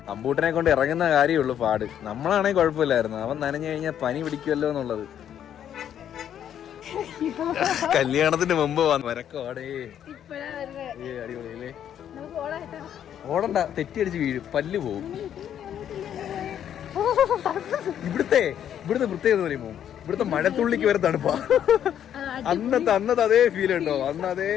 അമ്പൂട്ടനെ കൊണ്ട് ഇറങ്ങുന്ന കാര്യമുള്ളൂ പാട്. നമ്മളാണെങ്കിൽ കുഴപ്പമില്ലായിരുന്നു. അവൻ നനഞ്ഞു കഴിഞ്ഞാൽ പനി പിടിക്കുമല്ലോ എന്നുള്ളത്. കല്യാണത്തിന് മുമ്പ് വരക്കോടേ. അടിപൊളിയല്ലേ? ഓടണ്ട, തെറ്റിയടിച്ച് വീഴും, പല്ല് പോവും. ഇവിടുത്തെ പ്രത്യേകത പറയുമ്പോ ഇവിടുത്തെ മഴത്തുള്ളിക്ക് വരെ തണുപ്പാ. അന്നത്തെ അതേ ഫീൽ ഉണ്ടോ? അന്ന് അതേ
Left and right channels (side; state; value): right; quieter; 9.8 dB